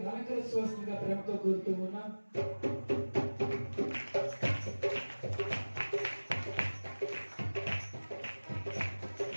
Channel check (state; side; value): inverted; both; correlation -1.00